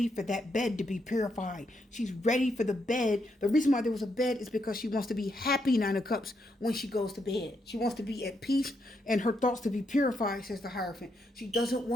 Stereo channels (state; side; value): normal; both; correlation 0.79